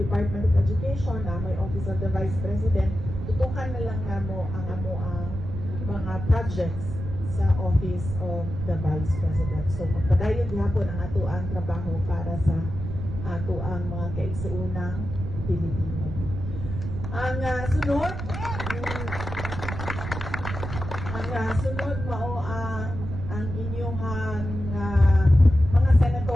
of Education, na may Office of the Vice President, tutukan na lang namo ang mga projects sa Office of the Vice President. So magpadayon gihapon ang ato ang trabaho para sa ato ang mga kaigsuunang Pilipino. Ang sunod mao ang inyong mga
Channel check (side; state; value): right; noise; rumble, 6 dB below the sound